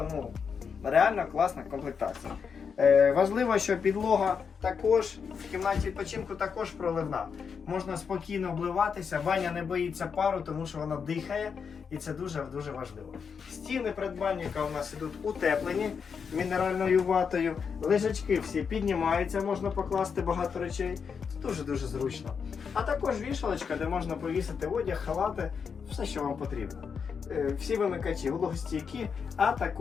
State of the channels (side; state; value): right; quieter; 6.2 dB